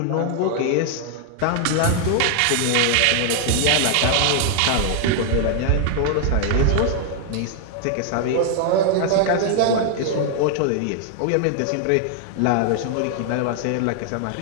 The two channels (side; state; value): both; different; correlation 0.00